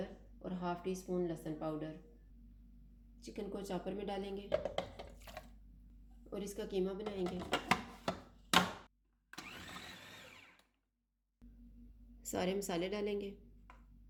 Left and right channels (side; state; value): both; identical; correlation 1.00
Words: और हाफ़ टी स्पून लहसुन पाउडर। चिकन को चॉपर में डालेंगे और इसका कीमा बनाएंगे। सारे मसाले डालेंगे